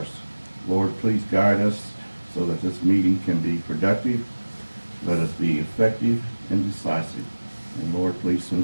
Lord, please guide us so that this meeting can be productive. Let us be effective and decisive. And Lord, please send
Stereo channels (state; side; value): inverted; both; correlation -1.00